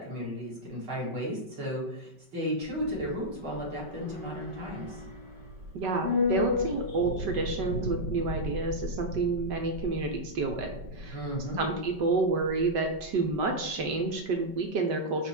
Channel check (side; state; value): left; late; 5.2 ms